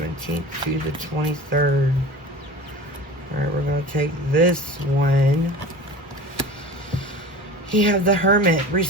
to the 23rd. Alright, we're going to take this one. You have the Hermit,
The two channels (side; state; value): both; normal; correlation 0.37